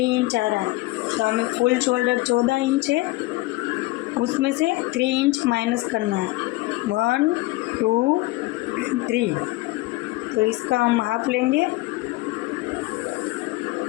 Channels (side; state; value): right; quieter; 20.8 dB